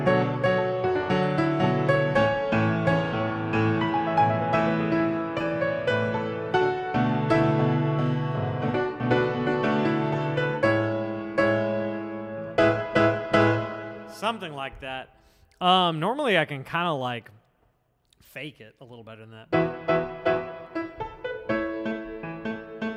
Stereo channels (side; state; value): both; identical; correlation 1.00